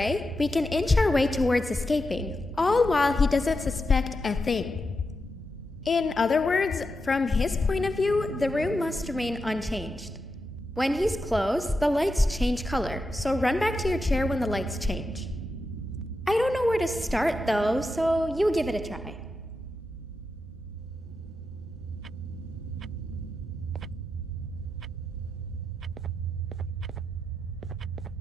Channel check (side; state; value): both; normal; correlation 0.88